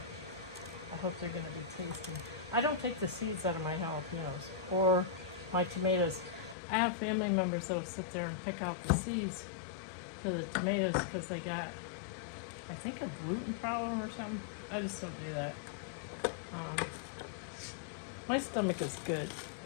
I hope they're going to be tasty. I don't take the seeds out of my jalapenos or my tomatoes. I have family members that will sit there and pick out the seeds for the tomatoes because they got, I think, a gluten problem or something. I just don't do that. My stomach is good.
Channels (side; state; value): right; drops out; at 6.6 s